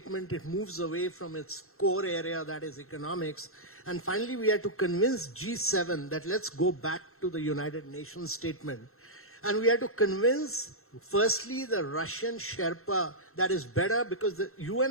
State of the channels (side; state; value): right; late; 0.62 ms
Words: it moves away from its core area, that is economics. And finally, we had to convince G7 that let's go back to the United Nations statement. And we had to convince, firstly, the Russian Sherpa that is better, because the